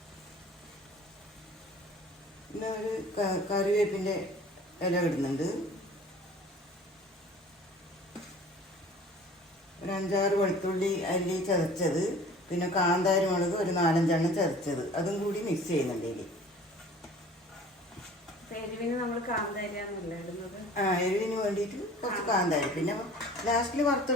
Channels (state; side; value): normal; both; correlation 0.47